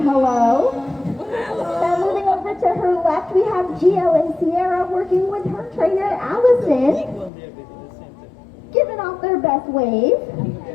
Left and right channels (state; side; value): drops out; right; at 7.3 s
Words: hello. Now moving over to her left, we have Gio and Sierra working with her trainer Allison, giving off their best wave.